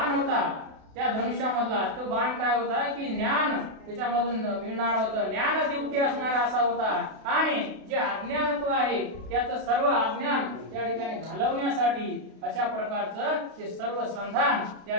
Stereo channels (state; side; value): late; left; 32 ms